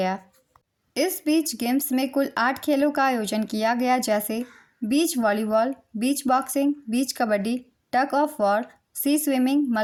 इस बीच गेम्स में कुल 8 खेलों का आयोजन किया गया, जैसे beach volleyball, beach boxing, beach kabaddi, tug of war, sea swimming,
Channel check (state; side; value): identical; both; correlation 1.00